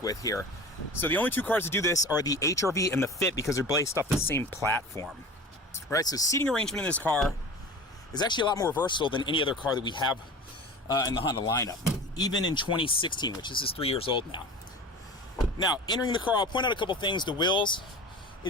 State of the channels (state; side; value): normal; both; correlation 0.36